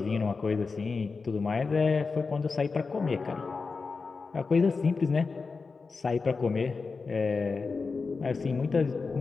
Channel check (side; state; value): right; quieter; 4.5 dB